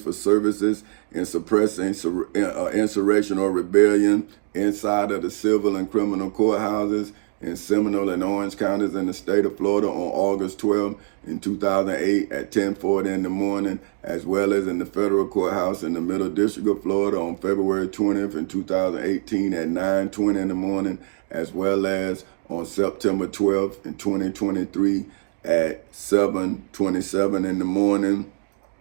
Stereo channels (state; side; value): silent; left; 63 dB below the other